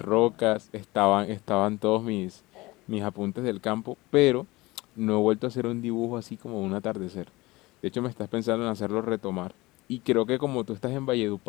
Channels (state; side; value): quieter; right; 21.2 dB